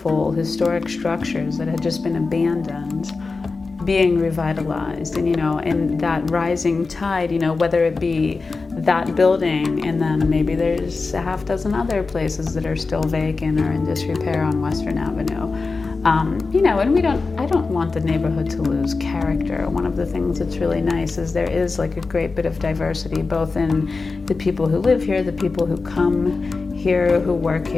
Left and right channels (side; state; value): right; quieter; 4.1 dB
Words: historic structures that had just been abandoned being revitalized. And, you know, and that rising tide, you know, whether it be that building and then maybe there's a half dozen other places that are still vacant or in disrepair on Western Avenue. You know, and I don't want the neighborhood to lose character. One of the things that's really nice is there is like a great bit of diversity, both in the people who live here, the people who come here, who work